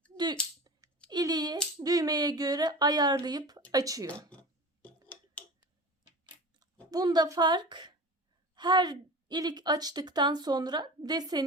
iliği düğmeye göre ayarlayıp açıyor. Bunda fark, her ilik açtıktan sonra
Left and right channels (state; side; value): normal; both; correlation 0.33